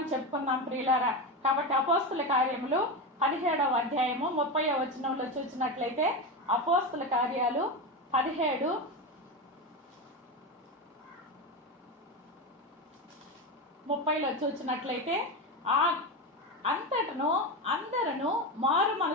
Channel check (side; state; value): both; normal; correlation 0.17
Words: చెప్పుకుందాం ప్రియులారా. కాబట్టి అపోస్తుల కార్యములు 17వ అధ్యాయము 30వ వచనంలో చూసినట్లయితే, అపోస్తుల కార్యాలు 17:30లో చూసినట్లయితే, ఆ అంతటను అందరూ మారు